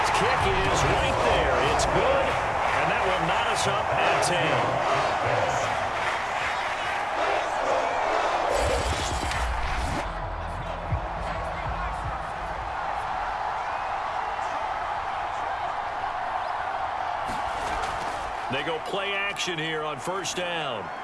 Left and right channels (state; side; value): identical; both; correlation 1.00